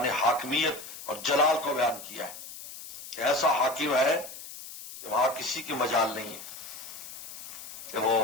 حاکمیت اور جلال کو بیان کیا ہے کہ ایسا حاکم ہے کہ وہاں کسی کی مجال نہیں ہے کہ وہ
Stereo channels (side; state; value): left; noise; hiss, 12 dB below the sound